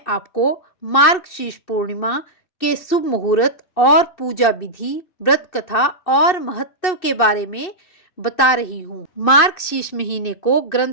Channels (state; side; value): late; right; 2.6 ms